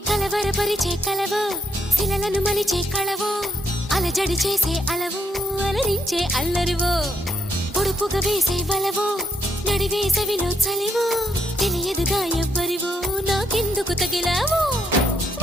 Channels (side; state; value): both; normal; correlation 0.74